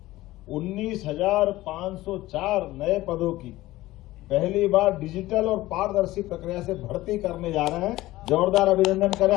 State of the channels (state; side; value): quieter; right; 17.2 dB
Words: 19,504 नए पदों की पहली बार डिजिटल और पारदर्शी प्रक्रिया से भर्ती करने जा रहे हैं। जोरदार अभिनंदन करें